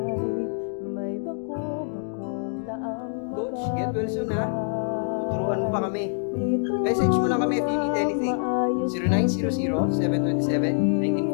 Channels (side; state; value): right; silent; digital silence